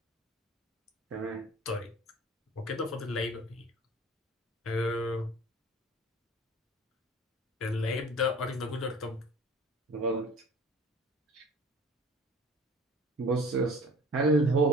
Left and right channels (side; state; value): both; normal; correlation 0.46